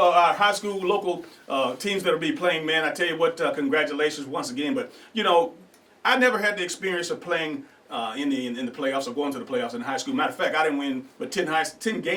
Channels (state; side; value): identical; both; correlation 1.00